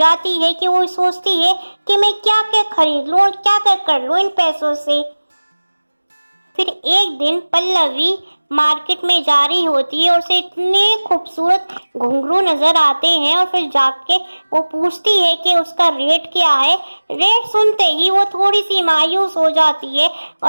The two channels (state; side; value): inverted; both; correlation -1.00